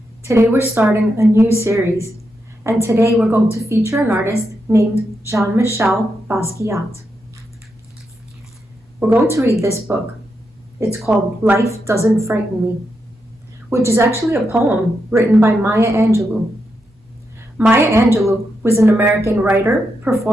Today we're starting a new series, and today we're going to feature an artist named Jean-Michel Basquiat. We're going to read this book. It's called Life Doesn't Frighten Me, which is actually a poem written by Maya Angelou. Maya Angelou was an American writer,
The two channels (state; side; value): normal; both; correlation 0.84